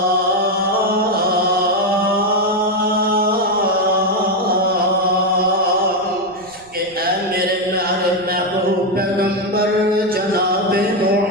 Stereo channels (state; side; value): noise; right; rumble, 27 dB below the sound